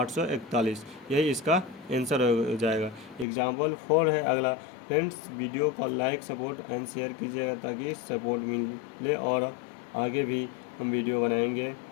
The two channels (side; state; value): right; drops out; at 3.2 s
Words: यही इसका आंसर हो जाएगा। एग्जाम्पल 4 है अगला। फ्रेंड्स वीडियो को लाइक सपोर्ट एंड शेयर कीजिएगा ताकि सपोर्ट मिले और आगे भी हम वीडियो बनाएंगे।